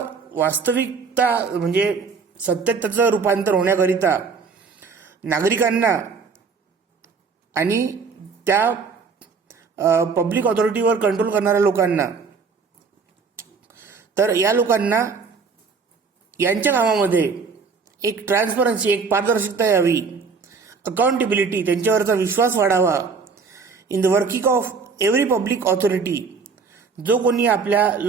वास्तविकता म्हणजे सत्यात त्याचं रूपांतर होण्याकरिता नागरिकांना आणि त्या पब्लिक ऑथॉरिटीवर कंट्रोल करणाऱ्या लोकांना, तर या लोकांना यांच्या कामामध्ये एक ट्रान्सपरन्सी, एक पारदर्शकता यावी, अकाउंटेबिलिटी, त्यांच्यावरचा विश्वास वाढावा in the working of every public authority. जो कोणी आपल्या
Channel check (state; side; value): quieter; left; 5.1 dB